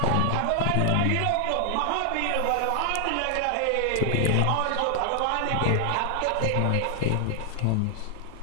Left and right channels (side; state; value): both; different; correlation 0.00